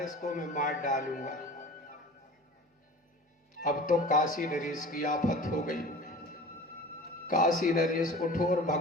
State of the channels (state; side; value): normal; both; correlation 0.39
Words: इसको मैं मार डालूंगा। अब तो काशी नरेश की आफत हो गई। काशी नरेश उठो और